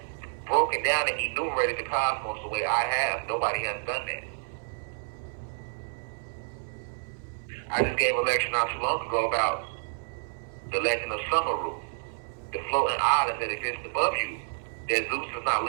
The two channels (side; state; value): left; silent; 58 dB below the other